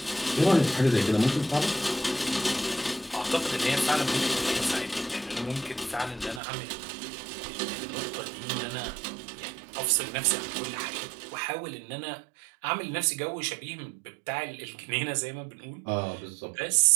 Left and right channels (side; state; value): left; drops out; at 6.4 s